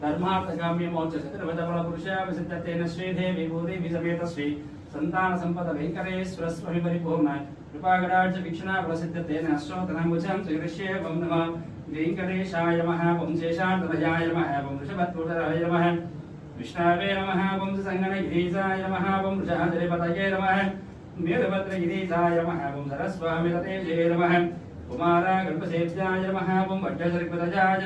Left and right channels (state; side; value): identical; both; correlation 1.00